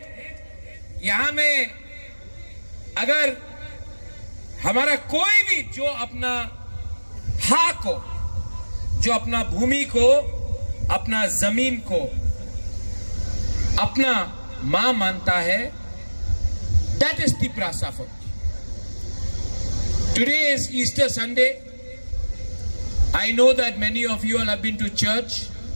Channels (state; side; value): inverted; both; correlation -1.00